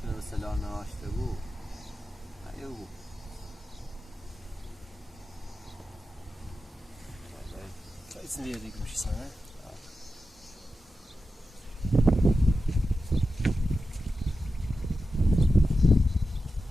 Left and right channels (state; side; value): normal; both; correlation 0.91